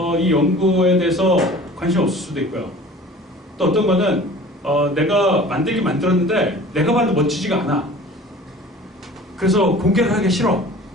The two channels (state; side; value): normal; both; correlation 0.44